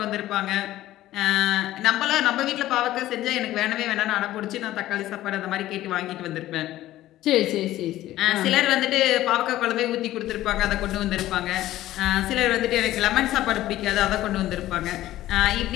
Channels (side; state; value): right; quieter; 14.8 dB